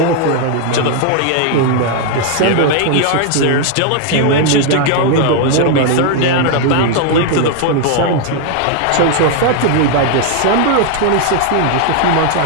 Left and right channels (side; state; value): both; different; correlation 0.00